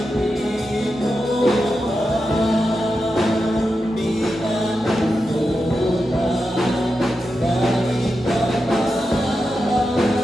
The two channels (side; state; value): both; normal; correlation 0.89